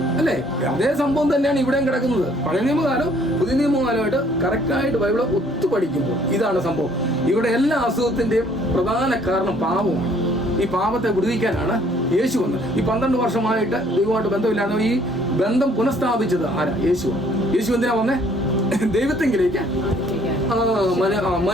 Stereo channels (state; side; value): normal; both; correlation 0.61